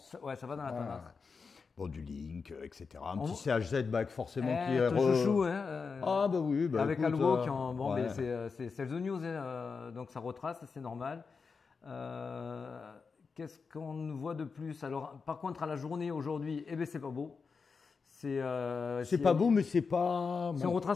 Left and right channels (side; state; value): right; quieter; 5.1 dB